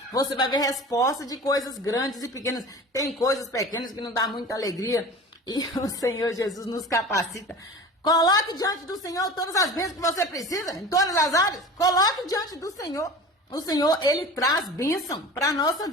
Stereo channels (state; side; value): normal; both; correlation 0.37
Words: Você vai ver resposta de coisas grandes e pequenas. Tem coisas pequenas que não dá muita alegria e o Senhor Jesus nos capacita. Coloque diante do Senhor todas as bênçãos que você precisa, em todas as áreas. Coloque diante do Senhor. O Senhor, Ele traz bênção para a nossa